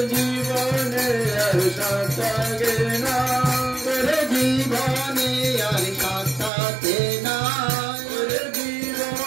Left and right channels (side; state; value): left; drops out; at 6.5 s